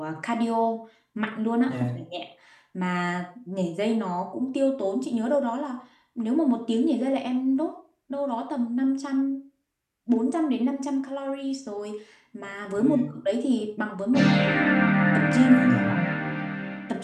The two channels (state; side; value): identical; both; correlation 1.00